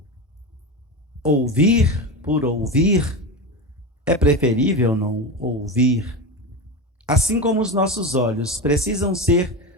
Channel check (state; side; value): normal; both; correlation 0.21